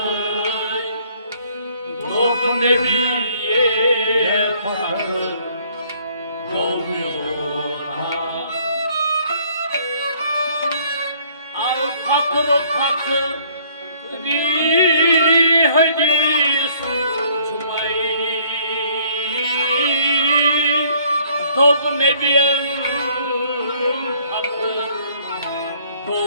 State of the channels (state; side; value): inverted; both; correlation -0.60